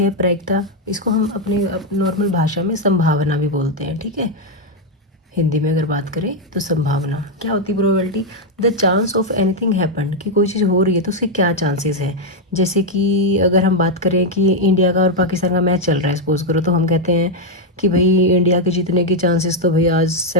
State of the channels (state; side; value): normal; both; correlation 0.01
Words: प्रायिकता, इसको हम अपने नॉर्मल भाषा में संभावना भी बोलते हैं। ठीक है, हिंदी में अगर बात करें तो संभावना क्या होती है probability. The chance of anything happen, कि कोई चीज़ हो रही है तो उसके क्या चांसेस हैं। जैसे कि अगर हम बात करें कि इंडिया का और पाकिस्तान का मैच चल रहा है, सपोज करो, तो हम कहते हैं कि भाई इंडिया के जीतने की चांसेस तो भाई आज